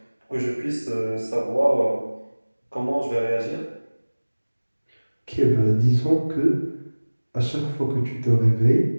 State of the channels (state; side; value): inverted; both; correlation -1.00